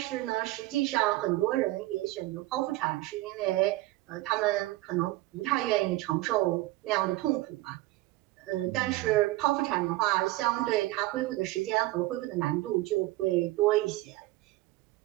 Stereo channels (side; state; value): left; quieter; 18.5 dB